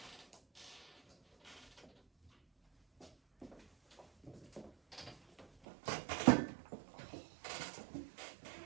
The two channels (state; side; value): drops out; left; at 5.5 s